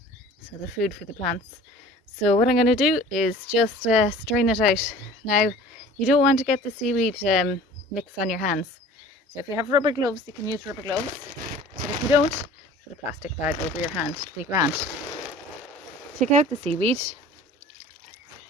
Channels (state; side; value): normal; both; correlation 0.45